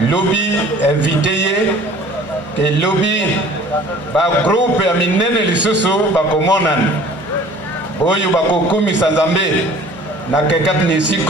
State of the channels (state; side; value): normal; both; correlation 0.49